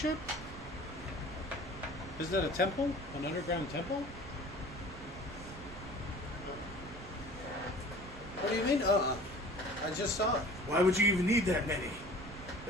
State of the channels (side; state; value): right; noise; rumble, 14 dB below the sound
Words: Is that a temple? An underground temple? What do you mean? I just saw it. Why would you even need that many?